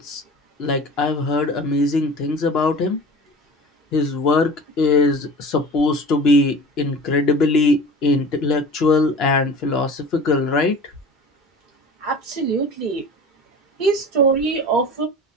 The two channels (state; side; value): normal; both; correlation 0.39